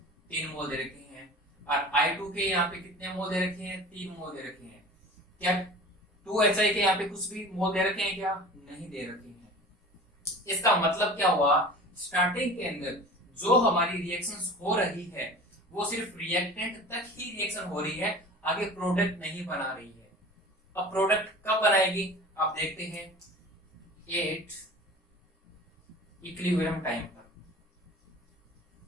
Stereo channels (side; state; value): both; normal; correlation 0.39